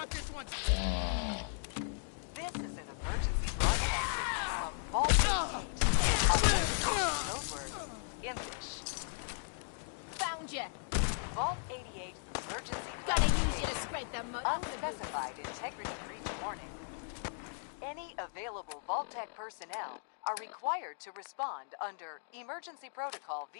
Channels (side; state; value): right; silent; digital silence